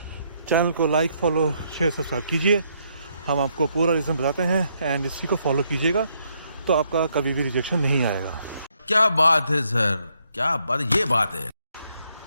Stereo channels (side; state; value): both; inverted; correlation -0.73